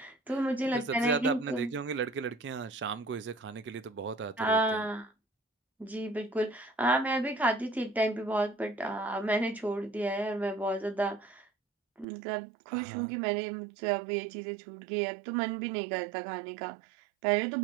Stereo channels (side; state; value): left; drops out; at 12.1 s